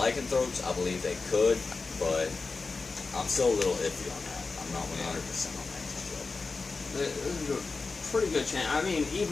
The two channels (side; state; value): right; quieter; 4.1 dB